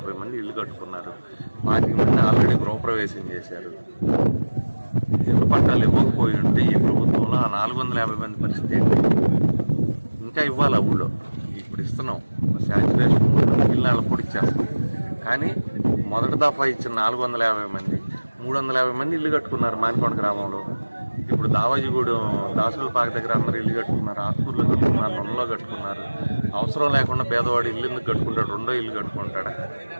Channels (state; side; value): inverted; both; correlation -1.00